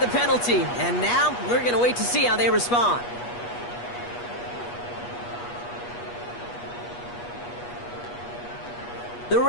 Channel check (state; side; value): late; right; 8.3 ms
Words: penalty. And now we're going to wait to see how they respond. The